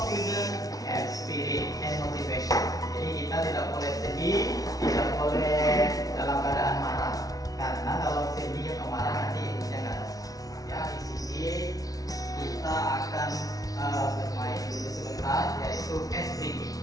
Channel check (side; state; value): right; late; 0.18 ms